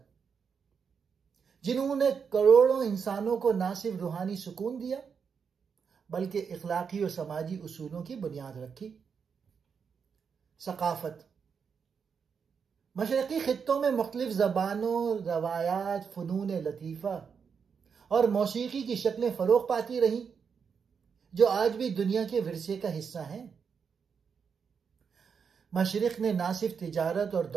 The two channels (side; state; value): left; quieter; 6.3 dB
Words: جنہوں نے کروڑوں انسانوں کو نہ صرف روحانی سکون دیا بلکہ اخلاقی اور سماجی اصولوں کی بنیاد رکھی۔ ثقافت۔ مشرقی خطوں میں مختلف زبانوں، روایات، فنون لطیفہ اور موسیقی کی شکلیں فروغ پاتی رہیں، جو آج بھی دنیا کے ورثے کا حصہ ہیں۔ مشرق نے نہ صرف تجارت اور